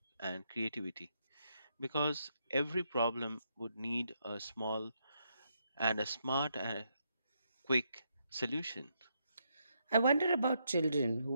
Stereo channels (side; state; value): both; inverted; correlation -0.78